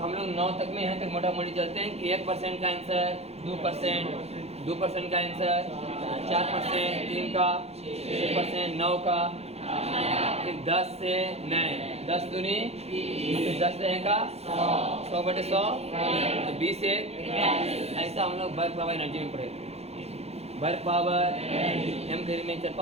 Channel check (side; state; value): left; late; 0.30 ms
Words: हम लोग 9 तक में यहाँ तक मोटा मोटी चलते हैं कि 1% का आंसर 2%, 2% का आंसर 4%, 3 का 6%, 9 का, फिर 10 से 9, 10 दूनी, फिर 10 रहेगा 100 बटे 100 तो 20 से। ऐसा हम लोग वर्क पावर एनर्जी में पढ़े। वर्क पावर एम थ्योरी में